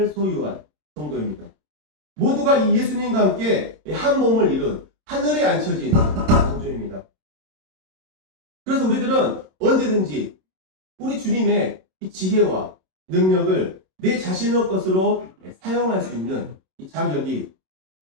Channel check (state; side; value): late; left; 27 ms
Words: 소유한 성도입니다. 모두가 이 예수님과 함께 한 몸을 이룬 하늘에 앉혀진 성도입니다. 그래서 우리들은 언제든지 우리 주님의 이 지혜와 능력을 내 자신의 것으로 사용할 수 있는 이 자격이